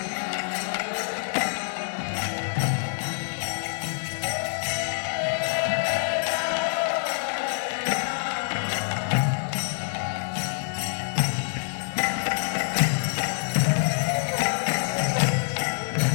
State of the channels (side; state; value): right; silent; 61 dB below the other